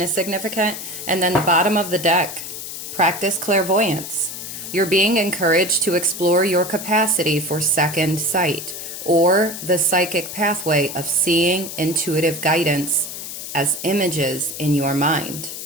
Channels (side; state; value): left; noise; hiss, 8 dB below the sound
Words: significant. And then the bottom of the deck, practice clairvoyance. You're being encouraged to explore your capacity for second sight, or the psychic pathway of seeing intuitive guidance as images in your mind.